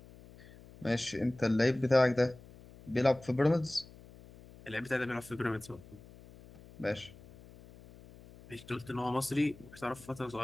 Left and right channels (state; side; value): noise; left; hum, 21 dB below the sound